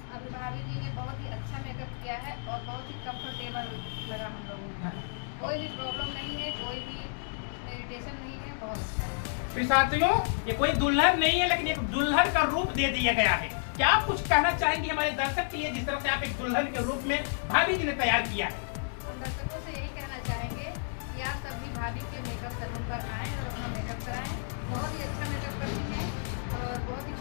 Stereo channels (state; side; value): silent; right; digital silence